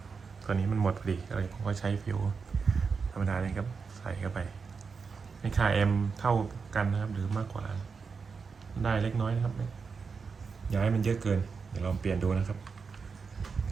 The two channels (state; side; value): quieter; left; 5.3 dB